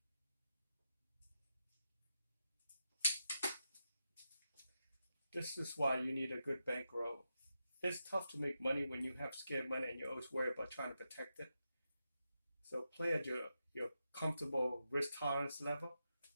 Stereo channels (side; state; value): both; inverted; correlation -0.87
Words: This is why you need a good bankroll. It's tough to make money when you have scared money and you always worry about trying to protect it. So play at your comfortable risk tolerance level,